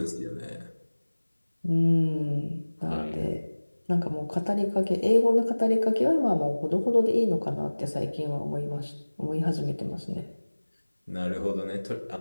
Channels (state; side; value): inverted; both; correlation -1.00